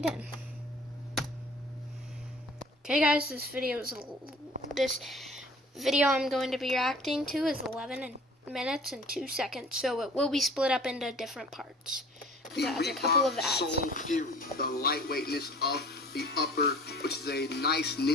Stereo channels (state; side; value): normal; both; correlation 0.48